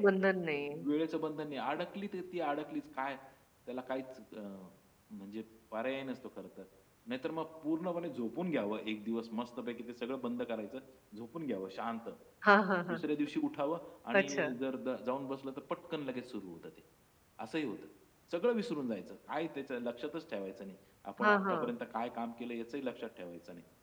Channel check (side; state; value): both; identical; correlation 1.00